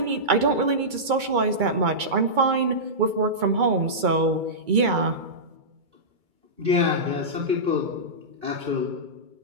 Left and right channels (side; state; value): left; late; 2.3 ms